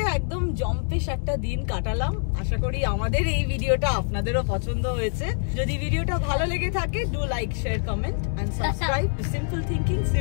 একদম জম্পেশ একটা দিন কাটালাম। আশা করি আমাদের এই ভিডিওটা আপনাদেরও পছন্দ হয়েছে। যদি ভিডিওটা ভালো লেগে থাকে, do like, share, comment and subscribe to Simple Thinking,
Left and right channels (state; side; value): silent; right; digital silence